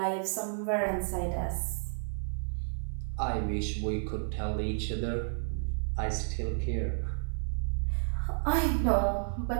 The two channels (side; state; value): left; silent; 57 dB below the other